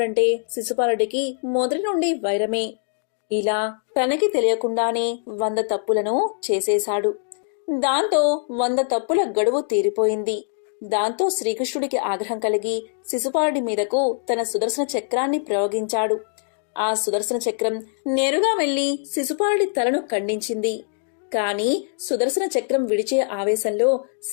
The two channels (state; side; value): silent; right; digital silence